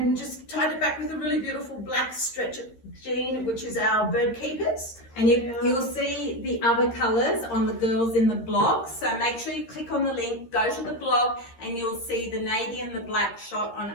just tied it back with a really beautiful black stretch jean, which is our bird keepers. And you'll see the other colours on the girls in the blog. So make sure you click on the link, go to the blog, and you'll see the navy and the black shot on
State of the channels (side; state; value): right; late; 13 ms